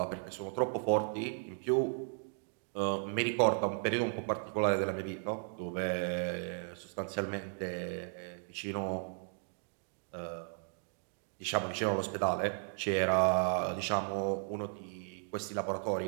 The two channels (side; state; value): left; silent; 54 dB below the other